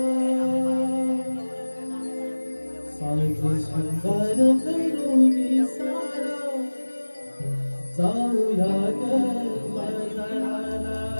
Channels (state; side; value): inverted; both; correlation -1.00